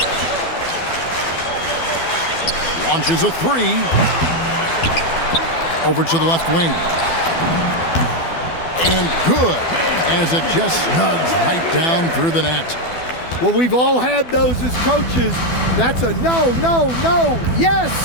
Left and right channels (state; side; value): late; right; 12 ms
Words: Launches a three. Over to the left wing. And good, as it just snugs right down through the net. Well, we've all had those as coaches. That's a no, no, no,